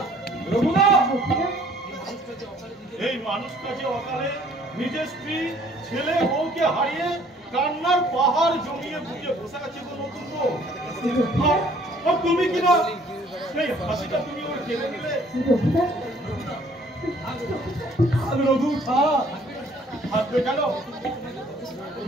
রঘুনাথ। এই মানুষটা যে অকালে নিজের স্ত্রী ছেলে বউকে হারিয়ে কান্নার পাহাড় জমিয়ে বুঝিয়ে বসে আছে গো নতুন বউ। আর তুমি কিনা সেই হাসিটা তুমি ওর কেড়ে নিলে। রঘু থাকবে কেন?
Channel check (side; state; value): both; normal; correlation 0.58